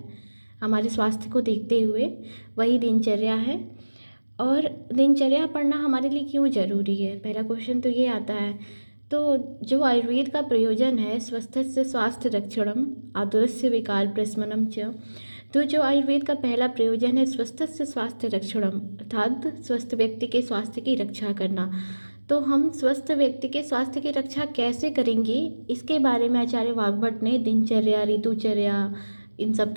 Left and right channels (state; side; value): inverted; both; correlation -1.00